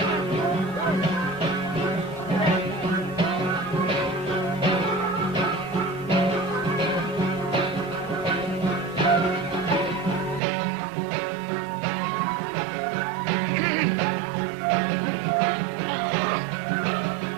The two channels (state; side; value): drops out; left; at 10.4 s